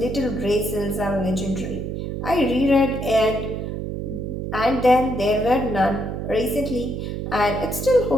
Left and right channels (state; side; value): noise; right; hum, 4 dB below the sound